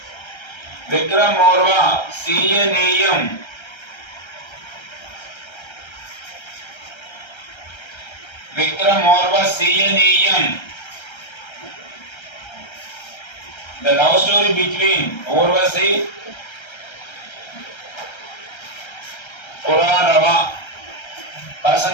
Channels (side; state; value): right; late; 1.3 ms